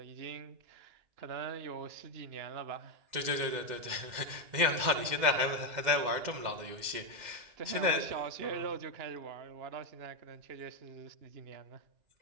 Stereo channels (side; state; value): left; late; 2.1 ms